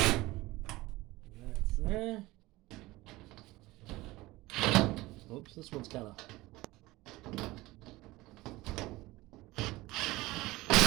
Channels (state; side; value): quieter; left; 19.6 dB